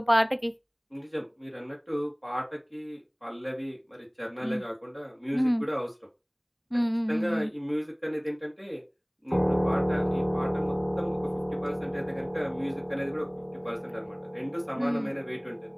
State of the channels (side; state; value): both; identical; correlation 1.00